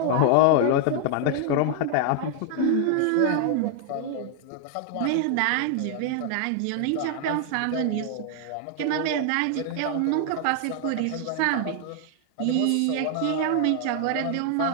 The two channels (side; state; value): both; different; correlation 0.00